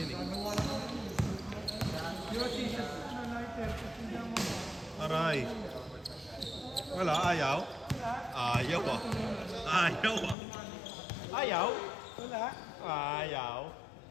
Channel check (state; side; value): drops out; right; at 10.4 s